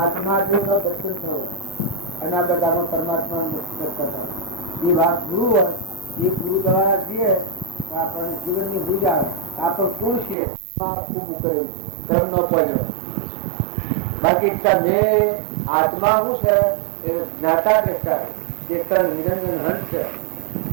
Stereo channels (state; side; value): drops out; left; at 10.4 s